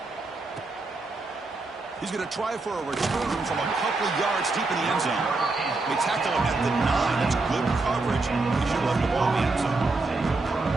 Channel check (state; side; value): quieter; left; 3.4 dB